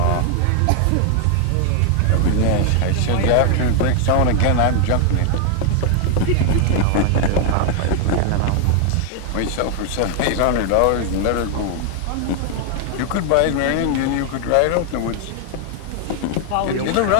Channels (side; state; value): both; different; correlation 0.00